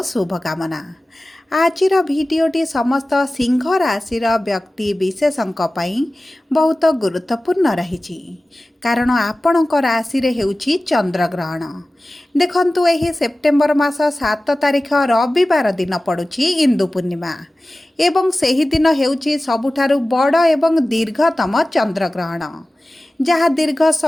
शुभकामना। आजिर भिडियोटी समस्त सिंह राशि व्यक्ति विशेषों बहुत गुरुत्वपूर्ण रही कारण आपणक राशि हेउछि चंद्रग्रहण। देखंतु एही सेप्टेम्बर मास 7 तारिख रविवार दिन पड़ुछि इंदु पूर्णिमा एवं सही दिन हेउछि सबुठारु बड़ एवं दीर्घतम चंद्रग्रहण जहाँ दीर्घ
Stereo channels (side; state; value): both; normal; correlation 0.96